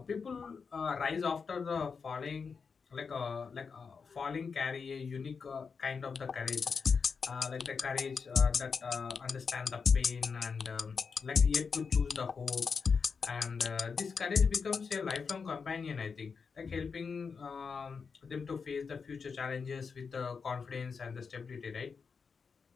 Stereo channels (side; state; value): right; quieter; 5.5 dB